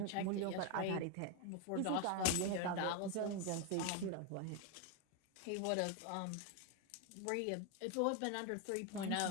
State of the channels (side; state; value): both; different; correlation 0.01